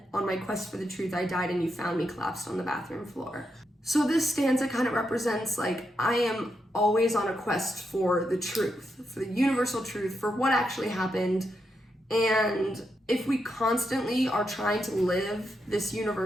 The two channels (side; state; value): both; normal; correlation 0.83